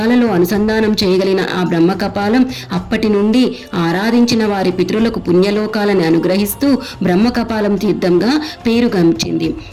అనుసంధానం చేయగలిగిన ఆ బ్రహ్మ కపాలం అప్పటి నుండి ఆరాధించిన వారి పితరులకు పుణ్యలోకాలను అనుగ్రహిస్తూ బ్రహ్మ కపాలం తీర్థంగా పేరుగంచింది.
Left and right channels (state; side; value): identical; both; correlation 1.00